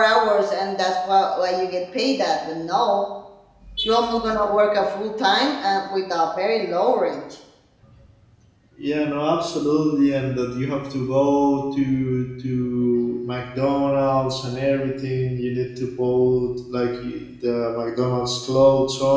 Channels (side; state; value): both; identical; correlation 1.00